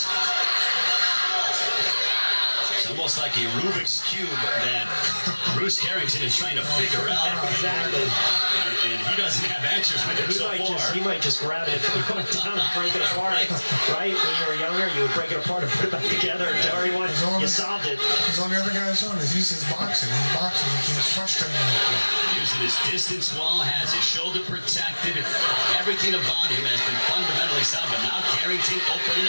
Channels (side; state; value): both; inverted; correlation -1.00